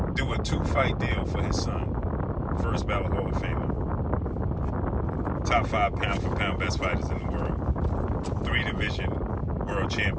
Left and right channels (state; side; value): identical; both; correlation 1.00